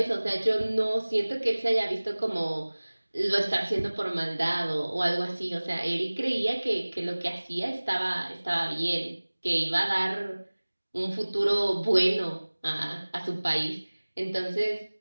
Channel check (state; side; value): inverted; both; correlation -1.00